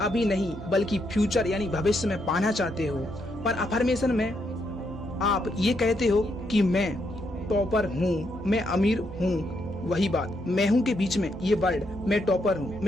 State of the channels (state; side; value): normal; both; correlation 0.78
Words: अभी नहीं बल्कि फ्यूचर यानी भविष्य में पाना चाहते हो। पर अफर्मेशन में आप ये कहते हो कि मैं टॉपर हूँ, मैं अमीर हूँ। वही बात, मैं हूँ के बीच में ये वर्ड, मैं टॉपर हूँ,